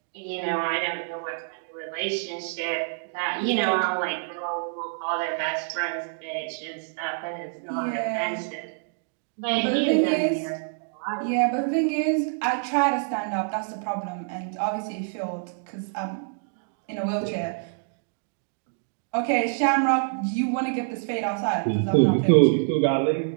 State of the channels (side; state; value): left; silent; digital silence